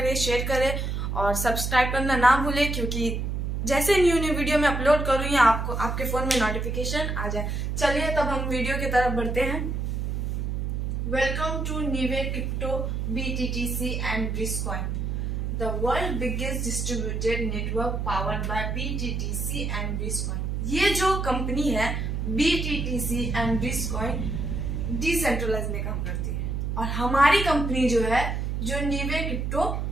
शेयर करें और सब्सक्राइब करना ना भूलें, क्योंकि जैसे न्यू वीडियो में अपलोड करूंगी आपको आपके फोन में नोटिफिकेशन आ जाए। चलिए तब हम वीडियो की तरफ बढ़ते हैं। Welcome to Neeve crypto BTTC and Bridgecoin, the world biggest distributed network powered by BTTC and Bridgecoin. ये जो कंपनी है BTTC एंड ब्रिजकॉइन डिसेंट्रलाइज में काम करती है, और हमारी कंपनी जो है जो नीवे क्रिप्टो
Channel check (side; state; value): right; noise; hum, 1 dB below the sound